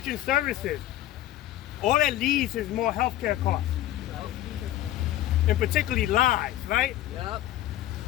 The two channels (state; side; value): quieter; right; 14.2 dB